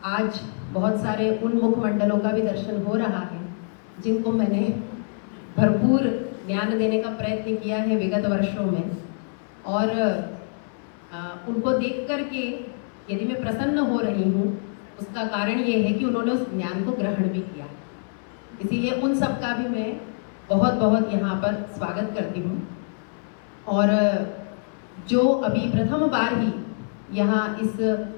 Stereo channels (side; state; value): right; silent; 60 dB below the other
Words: आज बहुत सारे उन मुखमंडलों का भी दर्शन हो रहा है जिनको मैंने भरपूर ज्ञान देने का प्रयत्न किया है विगत वर्षों में, और उनको देख करके यदि मैं प्रसन्न हो रही हूँ उसका कारण ये है कि उन्होंने उस ज्ञान को ग्रहण भी किया। इसीलिए उन सब का भी मैं बहुत बहुत यहाँ पर स्वागत करती हूँ। और जो अभी प्रथम बार ही यहाँ